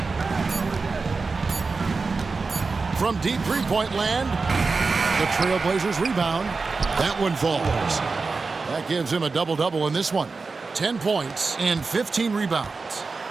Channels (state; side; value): quieter; left; 4.2 dB